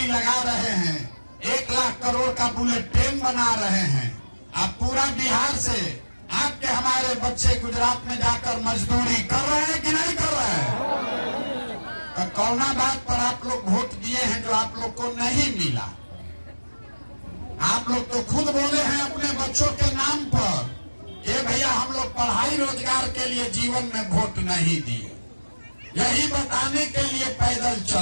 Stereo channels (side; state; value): both; inverted; correlation -1.00